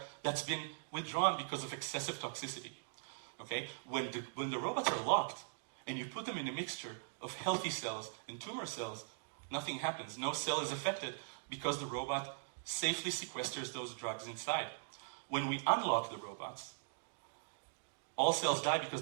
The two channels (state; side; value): silent; left; digital silence